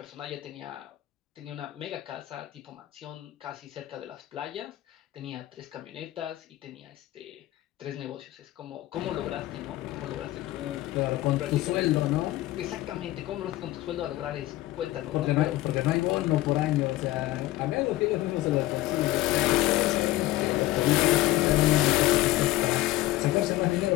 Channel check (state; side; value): quieter; right; 16.4 dB